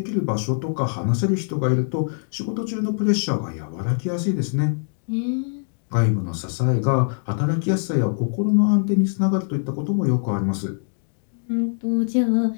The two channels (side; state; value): right; silent; digital silence